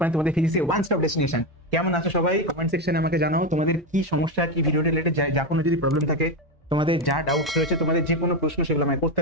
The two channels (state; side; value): normal; both; correlation 0.12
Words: তোমাদের ফিজিক্সের one stop destination. কেমন আছো সবাই? কমেন্ট সেকশনে আমাকে জানাও তোমাদের কি সমস্যা, কি ভিডিও রিলেটেড যা কোনো যদি প্রবলেম থাকে, তোমাদের যা ডাউটস রয়েছে, তোমাদের যে কোনো প্রশ্ন সেগুলো আমায় করতে